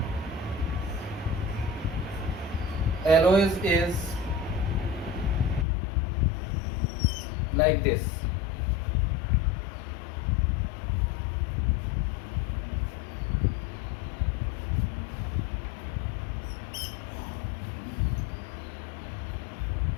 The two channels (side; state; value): right; drops out; at 5.7 s